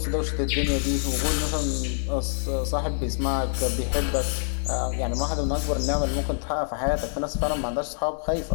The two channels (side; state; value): right; silent; 61 dB below the other